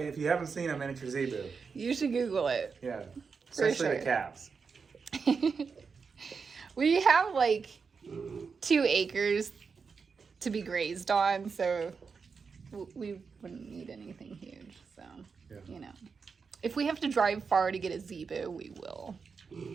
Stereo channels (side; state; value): left; quieter; 5.4 dB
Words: you haven't seen a miniature zebu, You should Google it. yeah, especially sure. the calves. We have like 2 acres to be grazed on, so we wouldn't need anything huge. So, you know, if we have to drive far to get a zebu, we will.